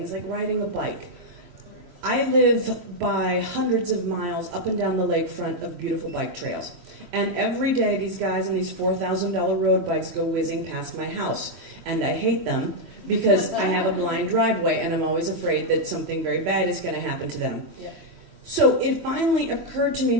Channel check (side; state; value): left; late; 3.1 ms